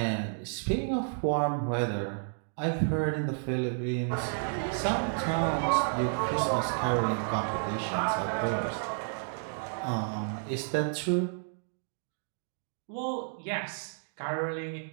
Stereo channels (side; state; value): left; silent; digital silence